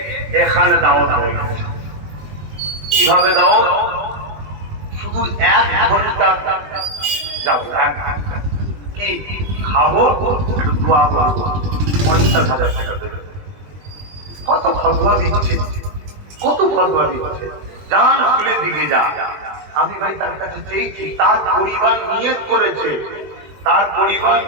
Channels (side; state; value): left; late; 20 ms